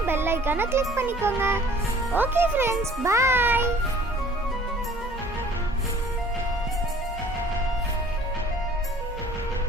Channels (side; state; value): both; normal; correlation 0.52